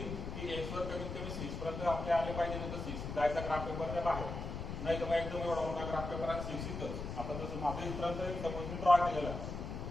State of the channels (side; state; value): left; noise; rumble, 6 dB below the sound